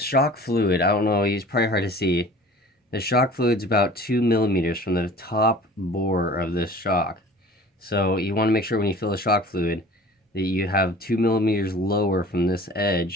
fluid, I don't know, it's probably hard to see. The shock fluid's about 2 millimeters from the top bore of this shock. So you want to make sure when you fill the shock fluid that you have 2 millimeters lower from this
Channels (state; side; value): normal; both; correlation 0.45